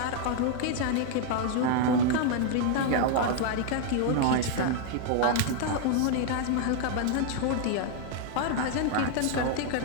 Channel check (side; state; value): both; different; correlation 0.00